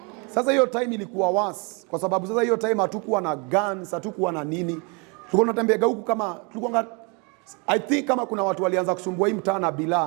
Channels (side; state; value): left; quieter; 32.3 dB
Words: Sasa hiyo time ilikuwa worse kwa sababu sasa hiyo time hatukuwa na guns, hatukuwa na nini. Tulikuwa tunatembea huku kama tulikuwa I think kama kuna watu walianza kusumbua hii mtaa na